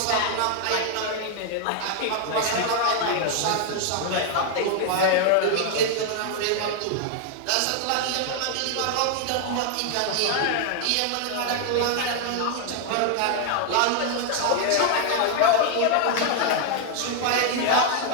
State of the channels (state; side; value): different; both; correlation 0.00